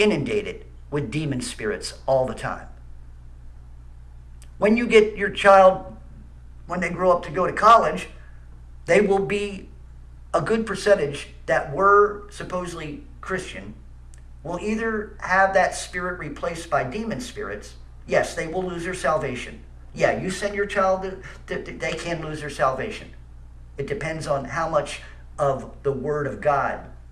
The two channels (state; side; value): identical; both; correlation 1.00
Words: with demon spirits all the time. When you get your child, when they grow up to go to college, they will be a good percentage that were supposedly Christian, will either have that spirit replaced by demon spirits. Yes, they will lose their salvation. Yeah, you send your child, they can lose their salvation. It depends on how much of the Word of God